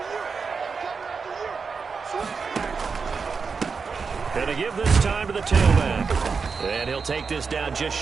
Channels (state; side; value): quieter; left; 5.2 dB